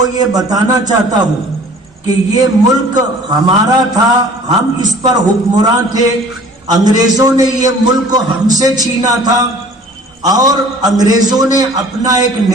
یہ بتانا چاہتا ہوں کہ یہ ملک ہمارا تھا، ہم اس پر حکمراں تھے. انگریزوں نے یہ ملک ہم سے چھینا تھا اور انگریزوں نے اپنا ایک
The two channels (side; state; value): both; normal; correlation 0.49